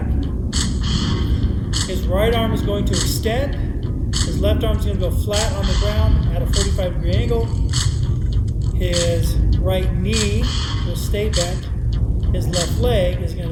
His right arm is going to extend. His left arm is going to go flat on the ground at a 45-degree angle. His right knee will stay bent. His left leg is going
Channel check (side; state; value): both; identical; correlation 1.00